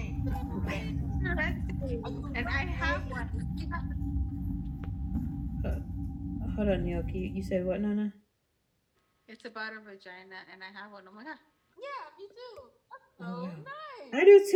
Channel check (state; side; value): identical; both; correlation 1.00